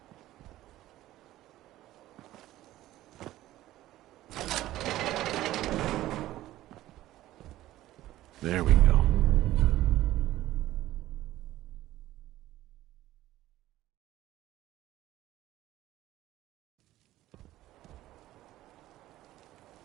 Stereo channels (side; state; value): left; quieter; 15.0 dB